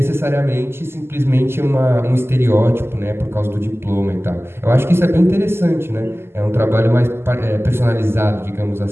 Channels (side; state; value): left; late; 0.12 ms